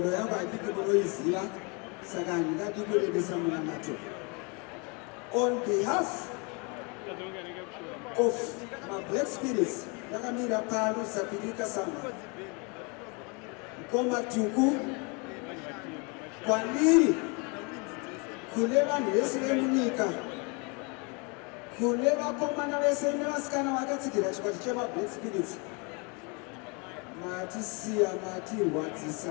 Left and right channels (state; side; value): quieter; right; 31.8 dB